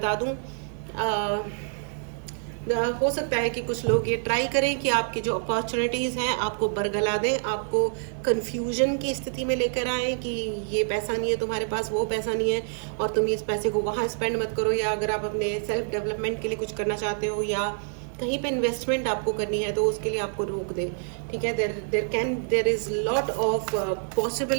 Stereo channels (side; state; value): left; silent; digital silence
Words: दूँ, हो सकता है कि कुछ लोग ये ट्राई करें कि आपकी जो अपॉर्चुनिटीज़ हैं आपको बरगला दें, आपको कन्फ्यूजन की स्थिति में लेकर आए कि ये पैसा नहीं है तुम्हारे पास, वो पैसा नहीं है और तुम इस पैसे को वहाँ स्पेंड मत करो। या अगर आप अपने सेल्फ डेवलपमेंट के लिए कुछ करना चाहते हो या कहीं पे इन्वेस्टमेंट आपको करनी है, तो उसके लिए आपको रोक दे, ठीक है। There is lot of